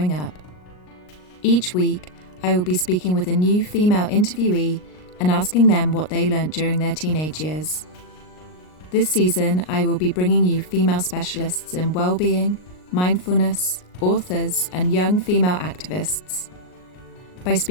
up. Each week, I will be speaking with a new female interviewee and asking them what they learnt during their teenage years. This season, I will be bringing you female specialists in well-being, mindfulness, authors, and young female activists. By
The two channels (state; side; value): late; right; 39 ms